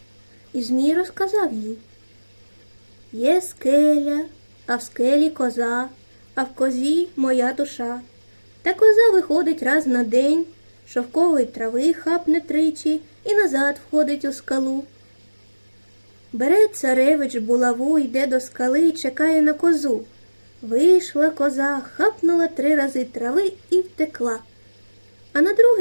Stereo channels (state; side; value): inverted; both; correlation -1.00